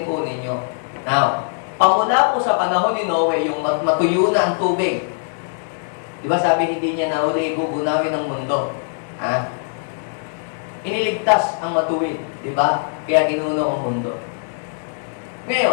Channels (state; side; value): silent; right; digital silence